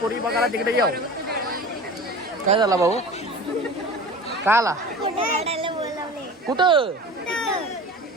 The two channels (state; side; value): normal; both; correlation 0.37